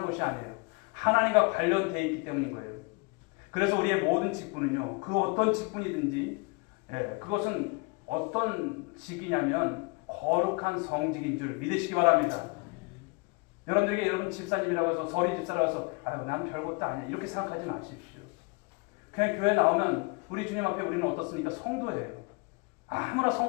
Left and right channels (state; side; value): quieter; right; 29.1 dB